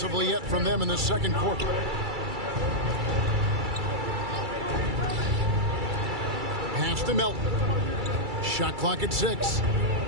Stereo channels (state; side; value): late; left; 2.3 ms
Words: yet from them in the second quarter. Pass to Melton. Shot clock at 6.